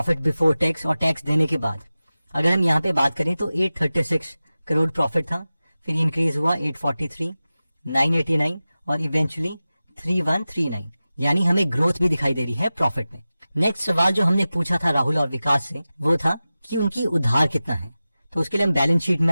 बिफोर टैक्स और टैक्स देने के बाद अगर हम यहाँ पे बात करें तो 836 करोड़ प्रॉफिट था, फिर इंक्रीज हुआ 843, 989 और इवेंचुअली 3139, यानी हमें ग्रोथ भी दिखाई दे रही है प्रॉफिट में। नेक्स्ट सवाल जो हमने पूछा था राहुल और विकास से वो था कि उनकी उधार कितना है। तो उसके लिए हम बैलेंस शीट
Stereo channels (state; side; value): inverted; both; correlation -0.96